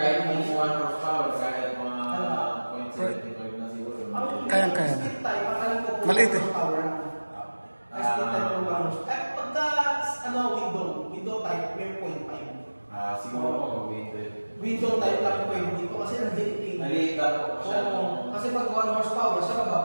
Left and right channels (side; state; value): both; inverted; correlation -1.00